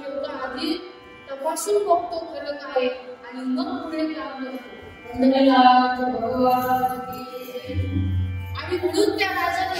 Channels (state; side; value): identical; both; correlation 1.00